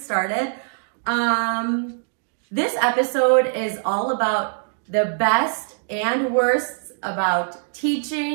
This episode is all about the best and worst about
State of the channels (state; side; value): silent; left; digital silence